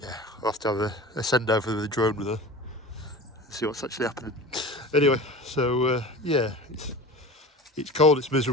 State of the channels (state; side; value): normal; both; correlation 0.35